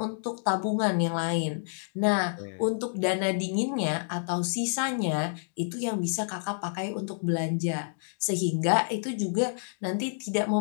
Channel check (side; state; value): right; silent; digital silence